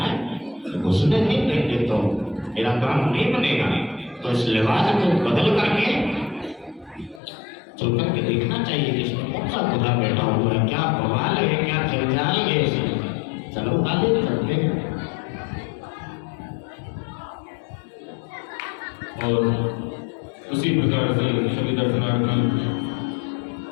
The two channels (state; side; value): drops out; right; at 7.2 s